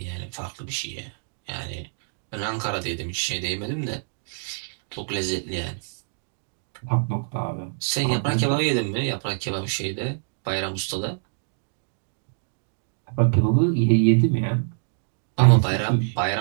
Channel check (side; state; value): left; silent; digital silence